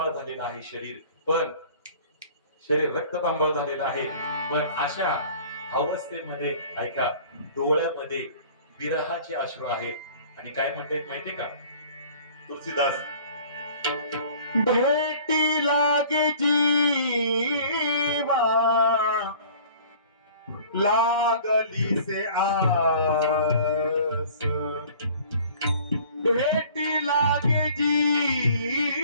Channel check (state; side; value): inverted; both; correlation -0.49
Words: झालेलं आहे, शरीर रक्तपांबळ झालेलं आहे. पण अशा अवस्थेमध्ये ऐका, डोळ्यामध्ये विरहाचे अश्रू आहेत. आणि काय म्हणते माहितीये का तुलसीदास, भेटी लागे जीवा लागली से आस, भेटी लागे